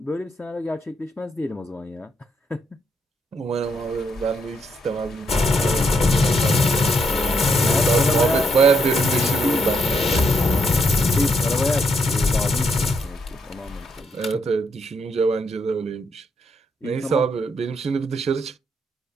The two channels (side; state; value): both; normal; correlation 0.76